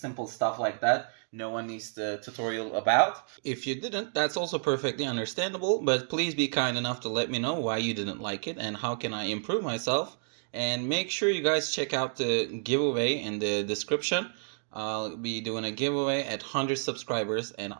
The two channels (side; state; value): left; silent; digital silence